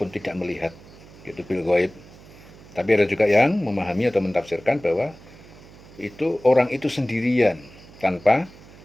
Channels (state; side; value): noise; right; hum, 21 dB below the sound